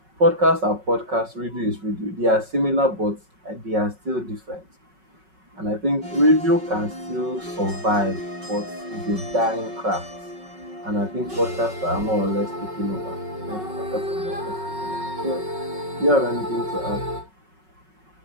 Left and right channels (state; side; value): late; left; 5.4 ms